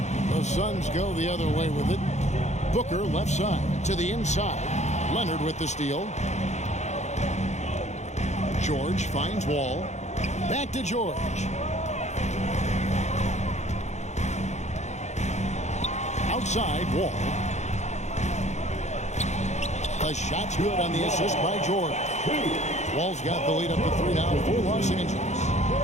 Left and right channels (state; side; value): late; right; 0.33 ms